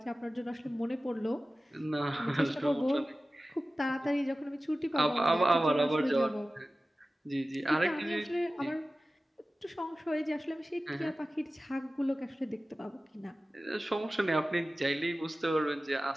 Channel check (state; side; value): normal; both; correlation 0.96